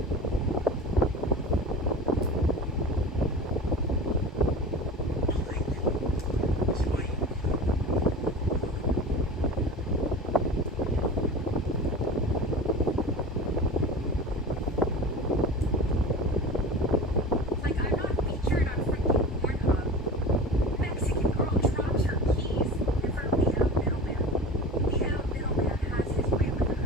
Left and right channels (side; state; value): both; normal; correlation 0.33